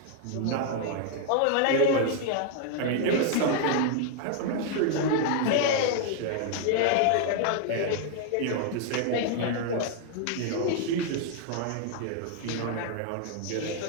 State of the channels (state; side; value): different; both; correlation 0.00